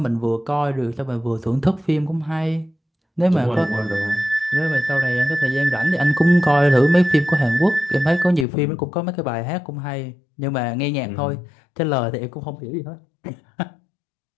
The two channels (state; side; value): drops out; right; at 8.5 s